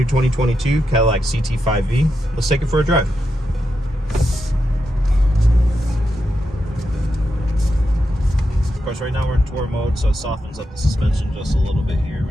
2022 Cadillac CT5V. Let's take it for a drive. Of course, right now we're in tour mode, so it softens up the suspension just a little bit here,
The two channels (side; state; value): both; normal; correlation 0.86